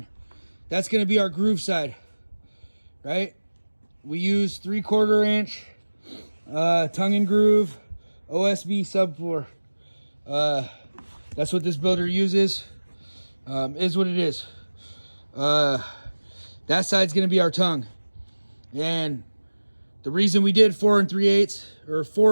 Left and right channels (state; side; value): inverted; both; correlation -1.00